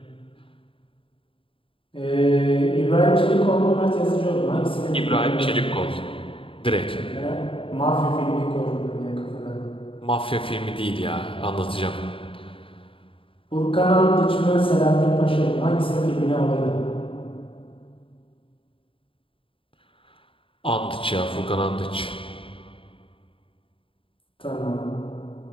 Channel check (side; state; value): right; late; 0.26 ms